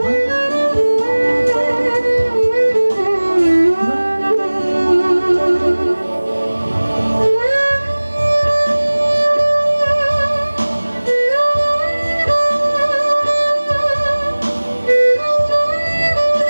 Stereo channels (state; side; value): inverted; both; correlation -1.00